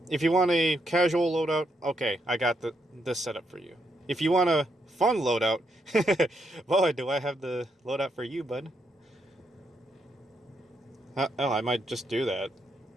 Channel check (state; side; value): normal; both; correlation 0.78